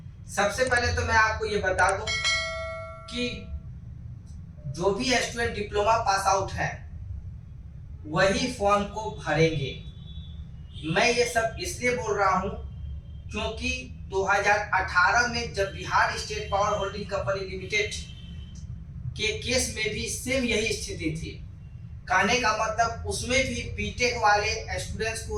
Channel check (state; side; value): identical; both; correlation 1.00